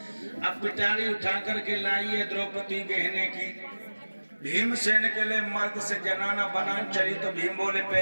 अब पिटारी उठा करके लाई है द्रौपदी गहने की, भीमसेन के लिए मर्द से जनाना बना चली। तो भीम बोले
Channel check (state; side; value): inverted; both; correlation -1.00